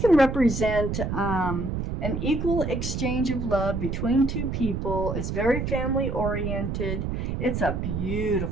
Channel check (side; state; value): right; noise; rumble, 3 dB below the sound